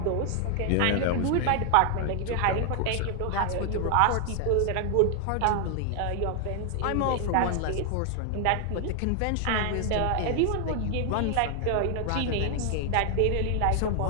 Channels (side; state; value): both; different; correlation 0.00